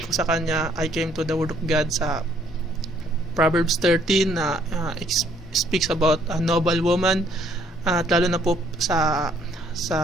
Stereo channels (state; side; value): normal; both; correlation 0.64